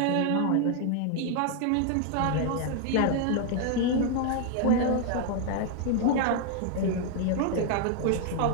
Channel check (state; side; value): different; both; correlation 0.00